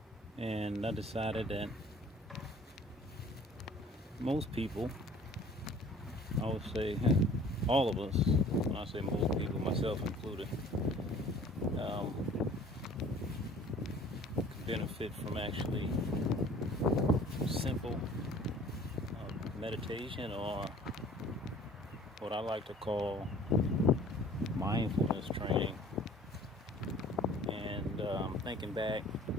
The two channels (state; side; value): normal; both; correlation 0.51